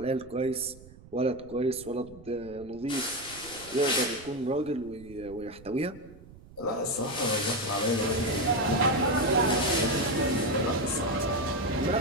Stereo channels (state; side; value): noise; right; rumble, 20 dB below the sound